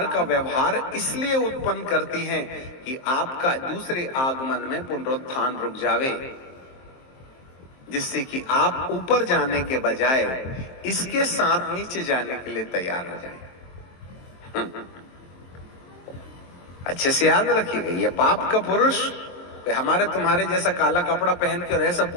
का व्यवहार इसलिए उत्पन्न करती हैं कि आपका दूसरे आगमन में पुनरुत्थान रुक जावे, जिससे कि आप ऊपर जाने के बजाय इसके साथ नीचे जाने के लिए तैयार हो जाएं। अच्छे से याद रखिएगा, ये पाप का पुरुष हमारे तुम्हारे जैसा काला कपड़ा पहन कर ऐसा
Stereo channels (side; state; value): right; late; 23 ms